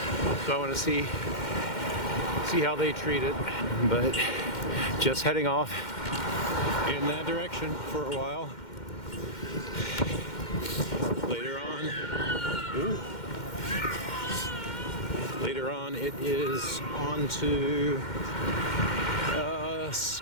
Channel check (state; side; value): late; right; 2.1 ms